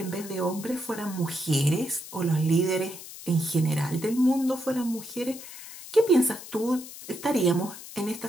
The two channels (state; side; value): noise; left; hiss, 14 dB below the sound